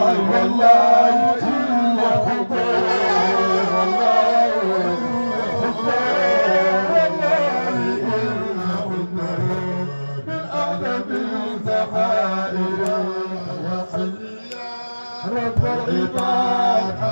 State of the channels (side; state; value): both; inverted; correlation -1.00